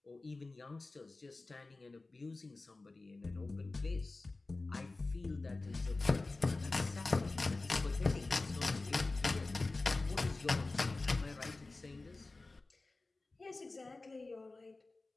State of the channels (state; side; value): quieter; right; 3.3 dB